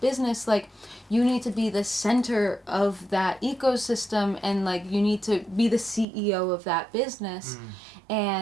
like, you need to be the center of that ecosystem, and, like, you need to be the CEO of that business,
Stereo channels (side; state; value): left; drops out; at 6.1 s